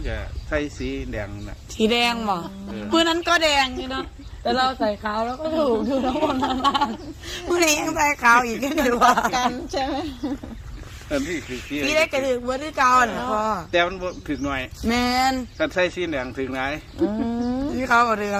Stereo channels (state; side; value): identical; both; correlation 1.00